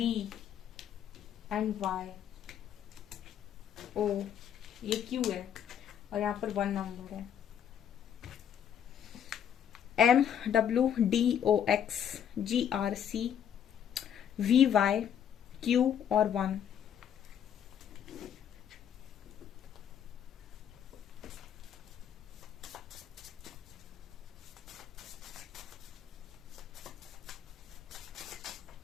and Y, O, ये क्यू है, और यहाँ पर 1 नंबर है। MWDOXGRCVYQ और 1।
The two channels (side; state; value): right; quieter; 9.1 dB